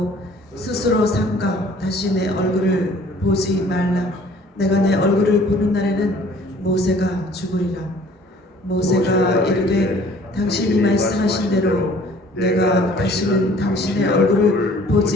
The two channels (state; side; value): normal; both; correlation 0.53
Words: 스스로 삼가 다시 내 얼굴을 보지 말라. 내가 내 얼굴을 보는 날에는 모세가 죽으리라. 모세가 이르되 당신이 말씀하신 대로 내가 다시는 당신의 얼굴을